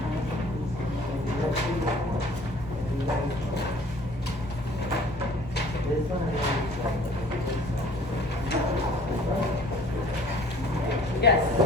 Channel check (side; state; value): both; normal; correlation 0.52